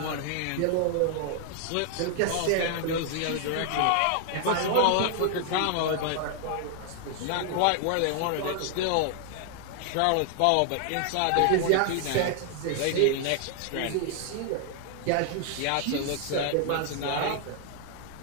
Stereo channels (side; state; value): both; different; correlation 0.00